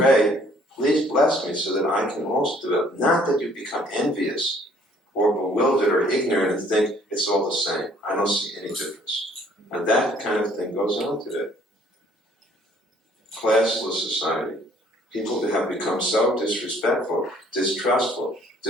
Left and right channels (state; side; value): normal; both; correlation 0.60